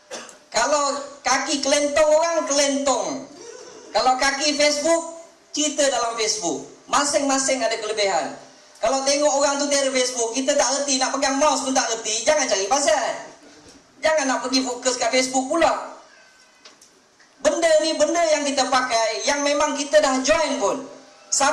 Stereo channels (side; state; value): both; identical; correlation 1.00